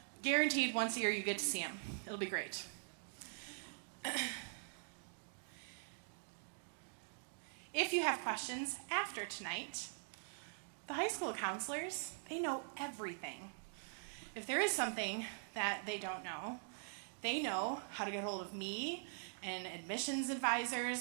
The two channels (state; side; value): silent; left; digital silence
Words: Guaranteed once a year you get to see them. It'll be great. If you have questions after tonight, the high school counselors, they know everything. If there is something that they don't know, they know how to get hold of me and admissions